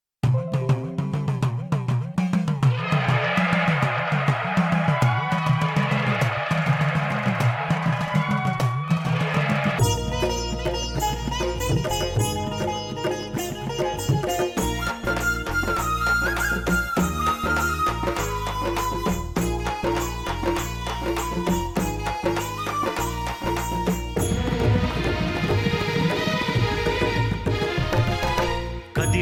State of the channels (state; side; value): identical; both; correlation 1.00